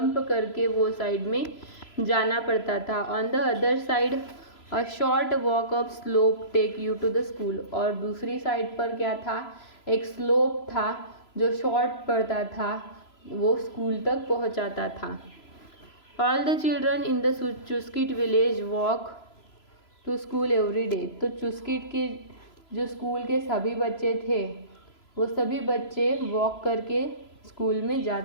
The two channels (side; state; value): right; late; 3.0 ms